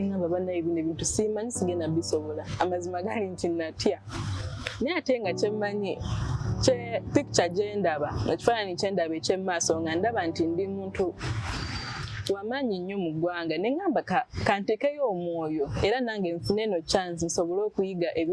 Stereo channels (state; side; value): identical; both; correlation 1.00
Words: bannaye bino ebintu simanyi sigenda bisobola. Amazima gali nti natya naye ate nga kyemmanyi picture gyendaba ekifaananyi kyendaba ekyemmaaso nga ndaba nti ndi muntu wamaanyi nnyo mu ggwanga nengamba kantekeyo omwoyo era nange nfune eno chance nsobole okuyiga